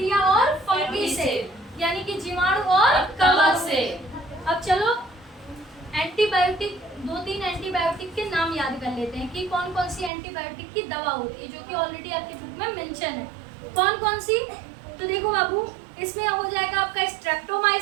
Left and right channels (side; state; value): left; drops out; at 10.1 s